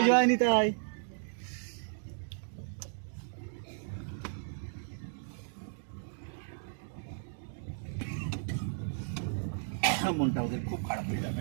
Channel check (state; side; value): silent; left; digital silence